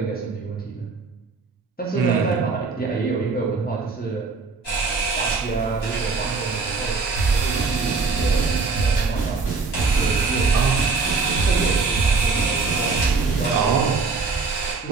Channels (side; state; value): left; quieter; 4.3 dB